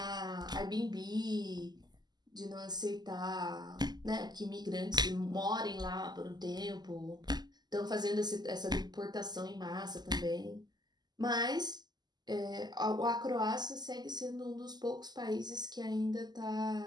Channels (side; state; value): left; late; 0.20 ms